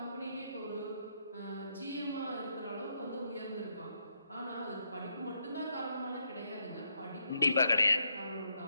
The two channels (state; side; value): inverted; both; correlation -0.78